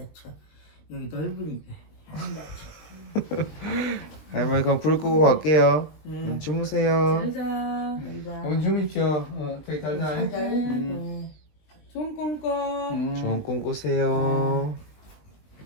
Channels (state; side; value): late; right; 19 ms